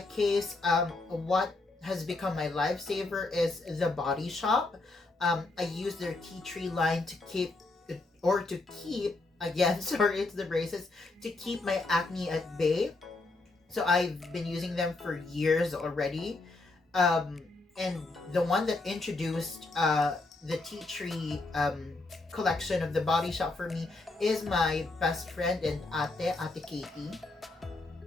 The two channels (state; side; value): quieter; right; 3.2 dB